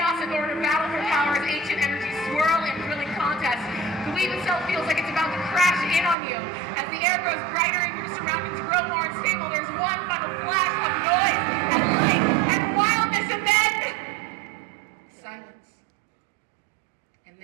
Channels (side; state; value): left; drops out; at 6.2 s